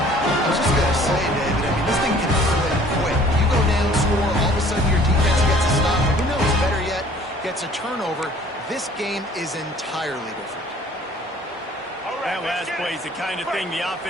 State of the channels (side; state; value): both; normal; correlation 0.53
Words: was just going to say, David, I mean, this thing can flip quick. You go down, score, all of a sudden your defense gets a stop. Who knows, better yet, gets a turnover. This game is entirely different. That last play is the kind of thing the